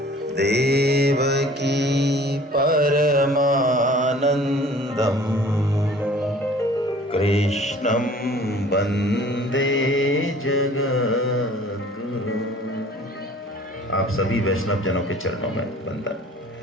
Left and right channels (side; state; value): both; normal; correlation 0.50